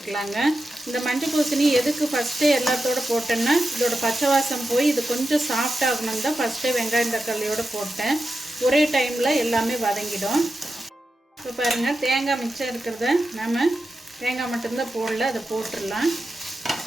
இந்த மஞ்சள் பூசணி எதுக்கு ஃபஸ்ட்டே எல்லாத்தோடு போட்டேன்னா இதோட பச்சை வாசம் போய் இது கொஞ்சம் சாஃப்ட் ஆகணும் தான் ஃபஸ்ட்டே வெங்காயம் தக்காளியோடு போட்டேன். ஒரே டைமில் எல்லாமே வதங்கிடும். இப்போ பாருங்கள், தேங்காய் மிச்சம் இருக்கிறத நம்ம தேங்காய் மட்டும்தான் போடல, அதை போட்டுடலாம்.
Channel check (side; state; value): both; normal; correlation 0.90